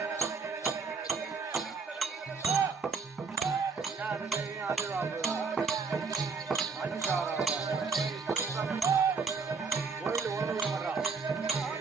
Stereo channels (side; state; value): left; quieter; 4.9 dB